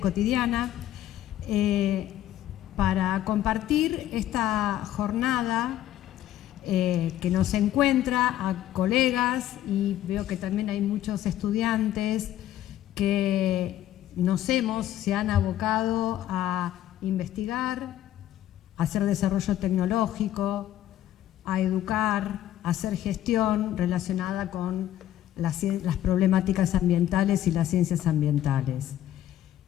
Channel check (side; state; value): right; quieter; 12.5 dB